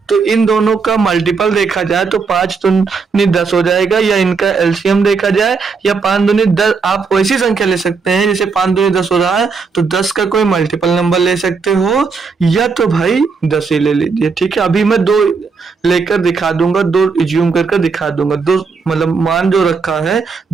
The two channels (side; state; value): left; quieter; 4.9 dB